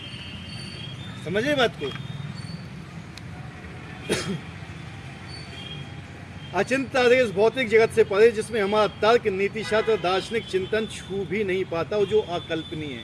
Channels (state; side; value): identical; both; correlation 1.00